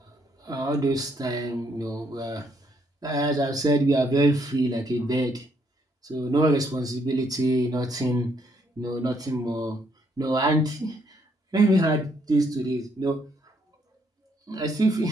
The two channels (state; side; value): normal; both; correlation 0.71